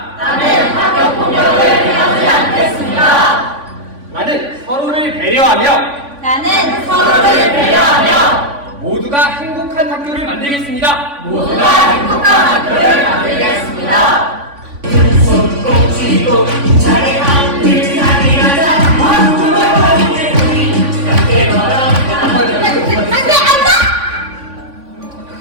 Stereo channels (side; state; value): left; late; 3.5 ms